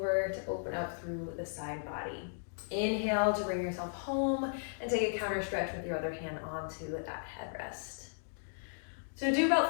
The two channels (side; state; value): right; silent; digital silence